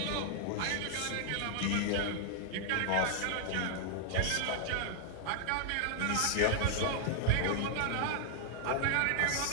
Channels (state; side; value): different; both; correlation 0.00